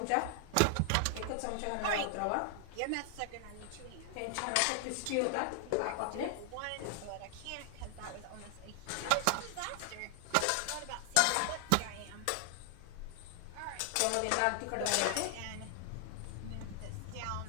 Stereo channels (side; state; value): both; different; correlation 0.00